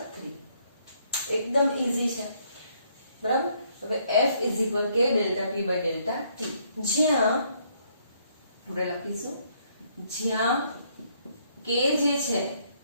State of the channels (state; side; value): inverted; both; correlation -0.69